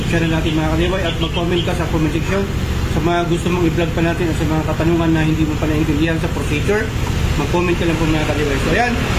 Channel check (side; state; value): both; identical; correlation 1.00